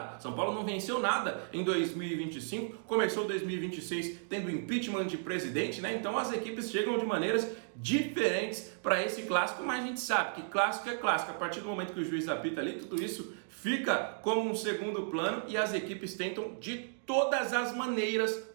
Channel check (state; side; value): silent; left; digital silence